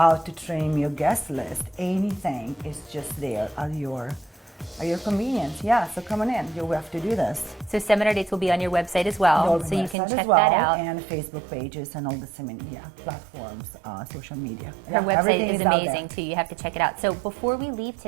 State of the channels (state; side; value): drops out; left; at 10.0 s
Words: to trim your guest list. Anything is just there at your at your convenience. Yeah, so come on in. You will have to do this. So seminar dates will be on your website as well, so you can Website check as well, that out. and Facebook pages and all the platforms, social media. Her website everything is out there. amazing too. You have to check it out. So before we leave